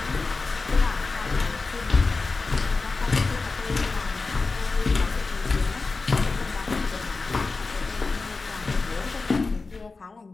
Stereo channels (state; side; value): quieter; right; 3.9 dB